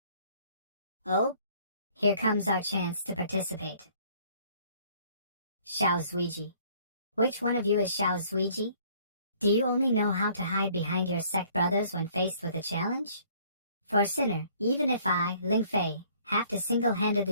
Oh? Here comes our chance to participate. Xiao Zuiji. Which one of you is Xiao Zuiji? Do you only know how to hide behind your sect brothers when faced with a challenge? For Sinner, even if I, Ling Fei, have to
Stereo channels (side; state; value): both; inverted; correlation -0.58